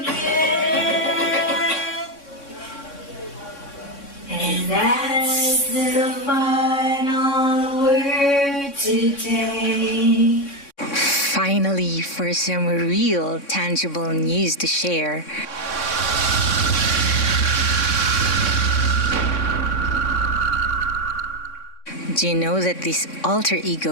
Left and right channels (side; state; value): right; late; 3.6 ms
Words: And that's the final word today. Finally, for some real, tangible news to share. Do you know that this alter